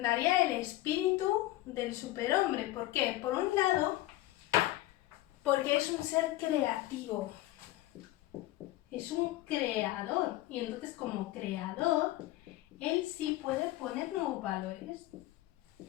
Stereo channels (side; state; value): right; quieter; 16.7 dB